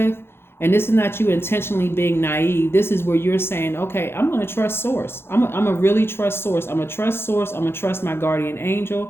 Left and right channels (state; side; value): late; right; 0.11 ms